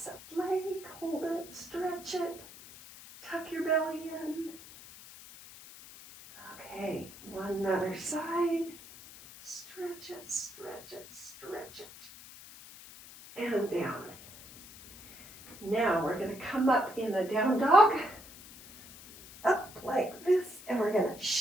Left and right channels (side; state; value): left; noise; hiss, 17 dB below the sound